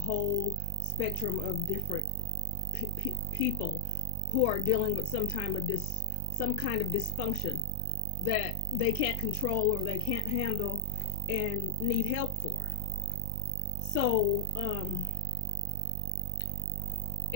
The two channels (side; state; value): both; different; correlation 0.00